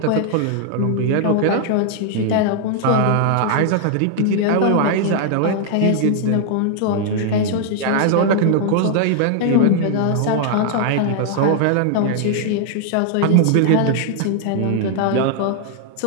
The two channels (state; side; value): different; both; correlation 0.00